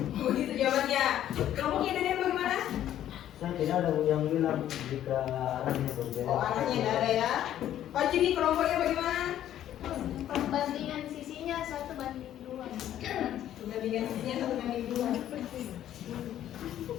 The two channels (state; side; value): quieter; right; 11.6 dB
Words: jawabannya. Kelompoknya dari bagaimana? Saya tidak ada yang bilang jika arahnya berbeda. Oh, arahnya tidak ada ya. Pak Juni, kelompoknya bagaimana? Perbandingan sisinya 1:2. Perbandingan sisinya 1:2.